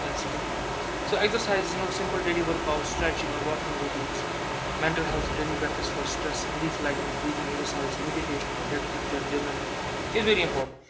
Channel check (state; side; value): identical; both; correlation 1.00